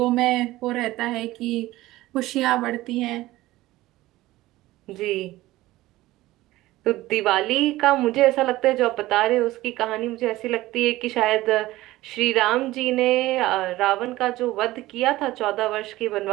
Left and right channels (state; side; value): quieter; left; 17.3 dB